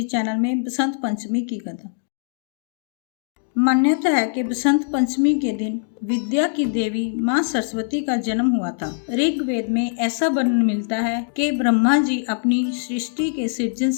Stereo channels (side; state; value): right; silent; digital silence